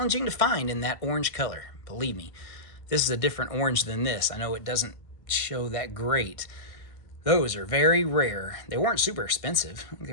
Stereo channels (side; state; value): right; late; 1.6 ms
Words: to find in that orange color. Believe me, this is a different orange than this. I know it doesn't show that great. Those are very rare. They weren't super expensive. They